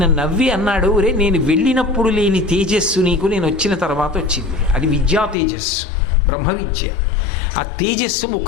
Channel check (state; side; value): drops out; right; at 5.4 s